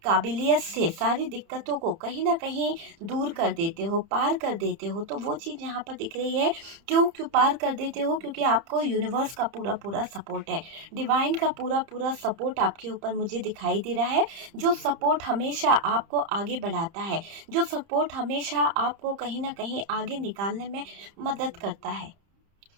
काबिलियत से सारी दिक्कतों को कहीं ना कहीं दूर कर देते हो, पार कर देते हो। तो वो चीज़ यहाँ पर दिख रही है। क्यों पार कर देते हो? क्योंकि आपको यूनिवर्स का पूरा पूरा सपोर्ट है, डिवाइन का पूरा पूरा सपोर्ट आपके ऊपर मुझे दिखाई दे रहा है। जो सपोर्ट हमेशा आपको आगे बढ़ाता है, जो सपोर्ट हमेशा आपको कहीं ना कहीं आगे निकालने में मदद करता है।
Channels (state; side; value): late; left; 30 ms